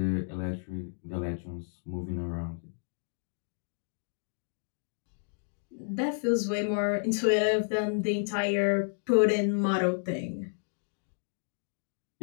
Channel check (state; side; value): silent; right; digital silence